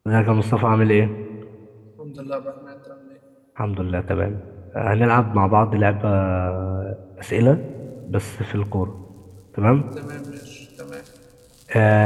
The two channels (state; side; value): identical; both; correlation 1.00